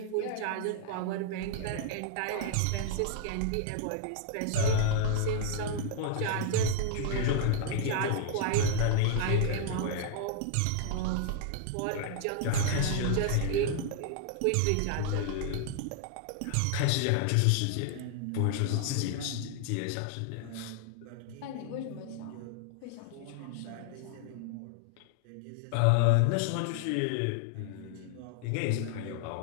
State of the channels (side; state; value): both; different; correlation 0.00